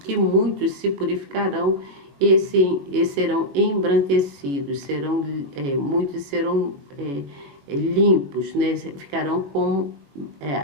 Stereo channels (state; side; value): late; left; 21 ms